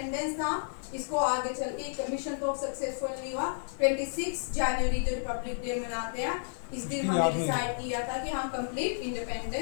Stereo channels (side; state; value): right; silent; 57 dB below the other